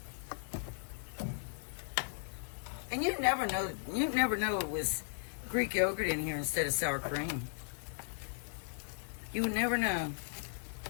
And you'd never know it was Greek yogurt in here instead of sour cream. You would never know.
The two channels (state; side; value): silent; right; digital silence